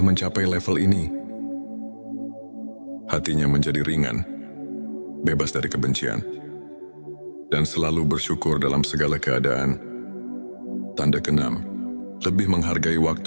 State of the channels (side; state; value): both; inverted; correlation -1.00